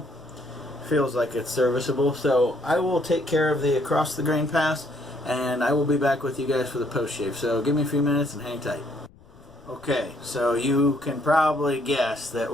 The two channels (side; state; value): left; noise; rumble, 26 dB below the sound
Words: Feels like it's serviceable, so I will take care of the across the grain pass, and I will be back with you guys for the post shave. So give me a few minutes and hang tight. Okay, so you can probably guess that